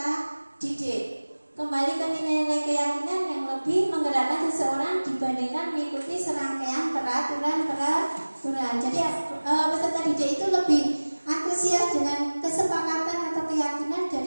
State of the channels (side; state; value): both; inverted; correlation -1.00